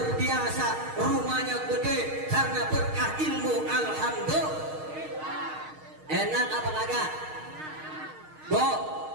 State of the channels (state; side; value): late; left; 6.5 ms